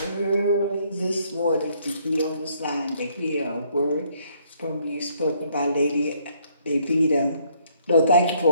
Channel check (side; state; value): both; inverted; correlation -0.67